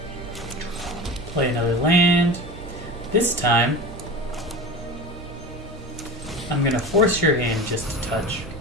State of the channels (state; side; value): normal; both; correlation 0.31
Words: Play another land. This time, I'm gonna force your hand just a touch.